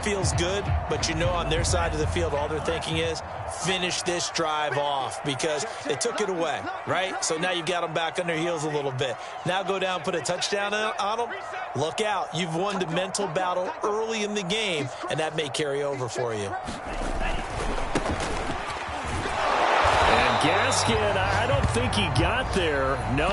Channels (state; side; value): identical; both; correlation 1.00